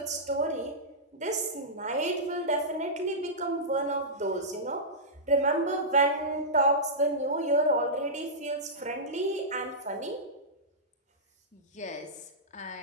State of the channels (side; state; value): both; normal; correlation -0.14